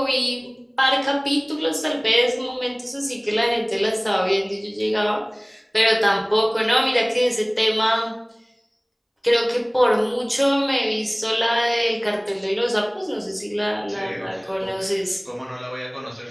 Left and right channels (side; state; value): both; identical; correlation 1.00